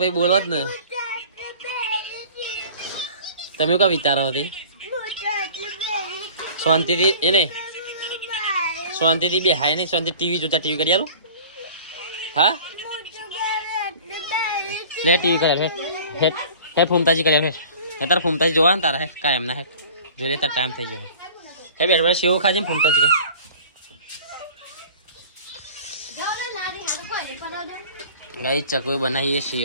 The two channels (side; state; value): both; inverted; correlation -0.45